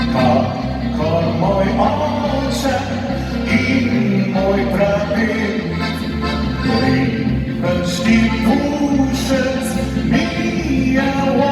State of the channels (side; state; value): both; identical; correlation 1.00